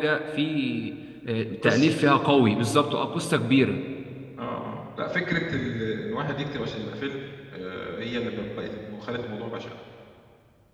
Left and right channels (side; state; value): both; identical; correlation 1.00